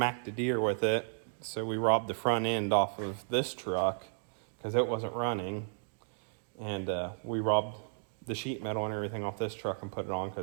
a deer with it. So we robbed the front end off of this truck because it wasn't running. And we robbed the sheet metal and everything off this truck and put it on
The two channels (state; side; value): silent; left; digital silence